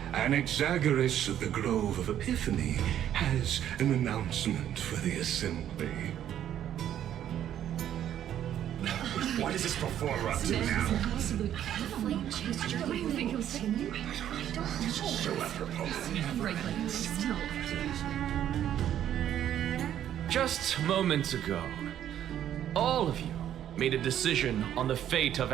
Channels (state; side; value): quieter; left; 10.8 dB